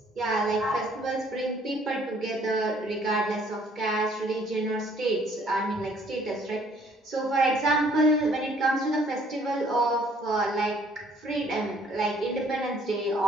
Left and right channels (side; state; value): both; normal; correlation 0.61